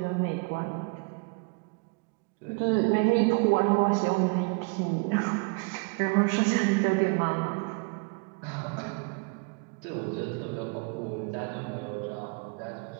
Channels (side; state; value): left; quieter; 32.0 dB